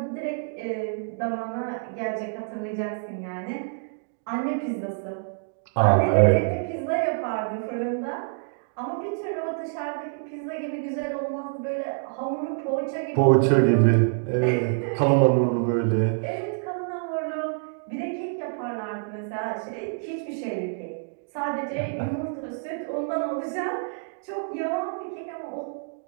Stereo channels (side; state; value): left; silent; digital silence